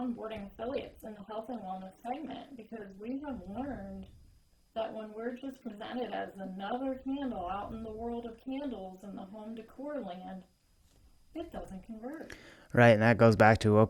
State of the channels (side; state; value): both; identical; correlation 1.00